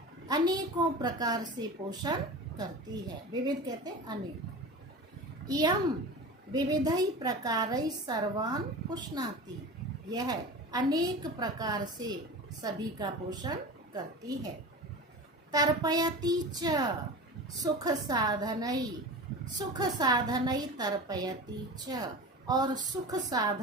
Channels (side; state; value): both; normal; correlation 0.32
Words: अनेकों प्रकार से पोषण करती है। विविध कहते हैं अनेक। इयम विविधै प्रकारै सर्वान् पुष्णाति। यह अनेक प्रकार से सभी का पोषण करती है। तर्पयति च सुख साधनै तर्पयति च, और सुख